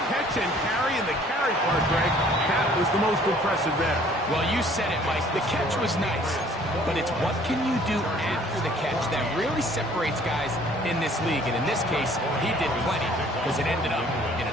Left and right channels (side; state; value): both; normal; correlation 0.56